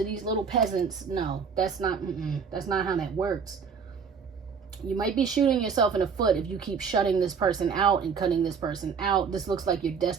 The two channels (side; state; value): left; quieter; 6.1 dB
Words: these little peasants. No, that's not how that works. You might be shooting yourself in the foot if you keep shutting this person out and cutting this person out. This looks like your